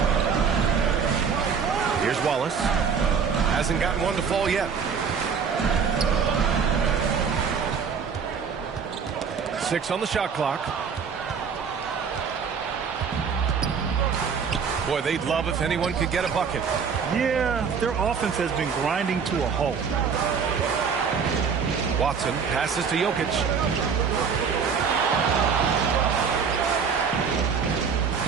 Here's Wallace. Hasn't gotten one to fall yet. 6 on the shot clock. Boy, they'd love if anyone could get a bucket. Yeah, their offense has been grinding to a halt. Watson passes to Jokic.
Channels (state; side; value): quieter; left; 6.2 dB